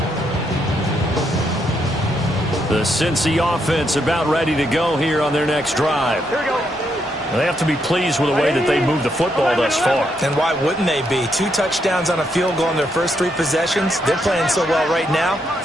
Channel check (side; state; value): both; normal; correlation 0.78